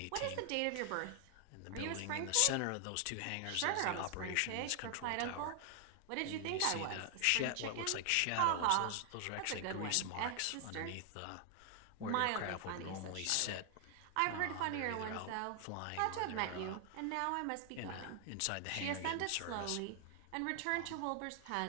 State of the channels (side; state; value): both; different; correlation 0.00